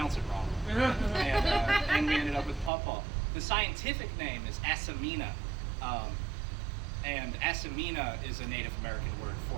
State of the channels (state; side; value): drops out; left; at 2.7 s